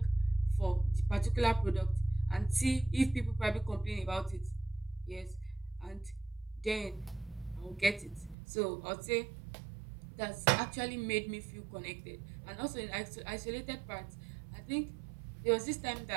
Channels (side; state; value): left; drops out; at 8.3 s